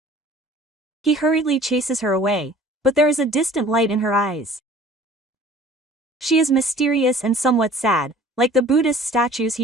He hurriedly chases her away, but there is a distant light in her eyes. She is mysterious and somewhat sad, like the Buddhist statues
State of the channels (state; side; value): normal; both; correlation 0.48